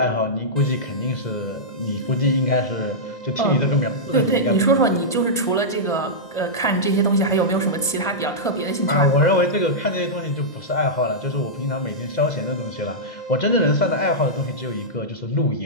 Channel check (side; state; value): right; late; 1.4 ms